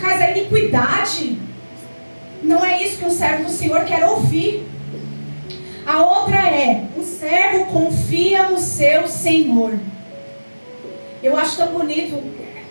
a iniquidade. Não é isso que um servo do Senhor quer ouvir. A outra é, o servo confia no seu Senhor. Eu acho tão bonito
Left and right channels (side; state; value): both; inverted; correlation -1.00